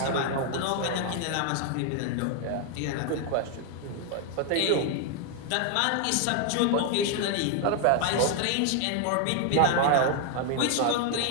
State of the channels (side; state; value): both; different; correlation 0.00